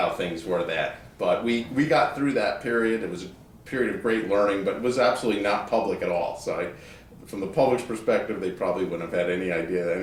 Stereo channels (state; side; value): identical; both; correlation 1.00